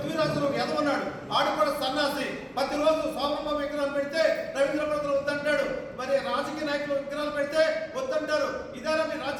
ఎదవన్నాడు, ఆడు కూడా సన్నాసి. ప్రతిరోజు సోమమ్మ విగ్రహాలు పెడితే రవీంద్ర భద్ర వద్దంటాడు, మరి రాజకీయ నాయకులు విగ్రహాలు పెడితే వద్దంటారు. ఇదేనా మీ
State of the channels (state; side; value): identical; both; correlation 1.00